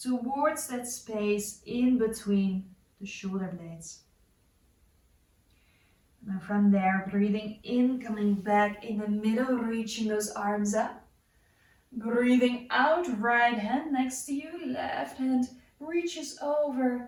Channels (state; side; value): identical; both; correlation 1.00